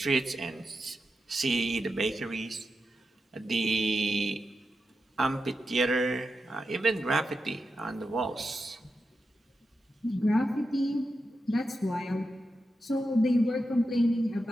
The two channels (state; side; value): normal; both; correlation 0.88